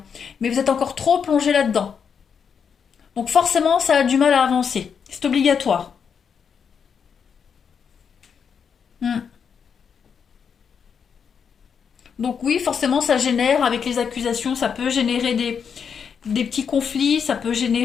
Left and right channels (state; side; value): quieter; right; 6.8 dB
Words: mais vous êtes encore trop plongé là-dedans. Donc forcément, ça a du mal à avancer. C'est obligatoire. Hmm. Donc oui, forcément, ça génère, avec les accusations, ça peut générer des petits conflits, ça peut